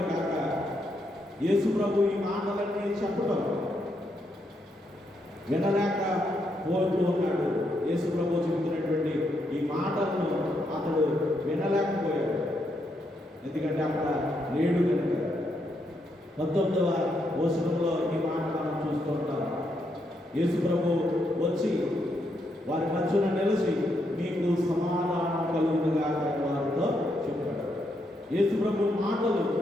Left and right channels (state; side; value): normal; both; correlation 0.79